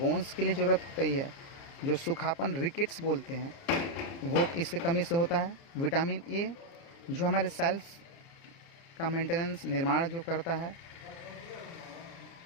के लिए ज़रूरत होती है, जो सूखापन रिकेट्स बोलते हैं वो इसके कमी से होता है। विटामिन ए जो हमारे सेल्स का मेंटेनेंस निर्माण जो करता है।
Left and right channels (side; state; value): right; late; 30 ms